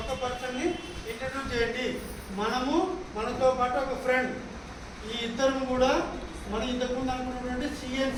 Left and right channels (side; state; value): both; identical; correlation 1.00